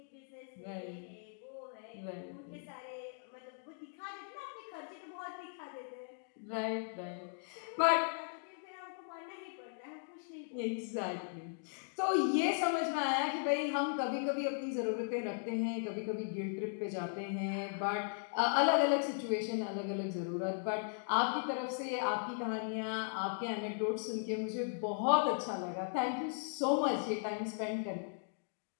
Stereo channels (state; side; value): silent; right; digital silence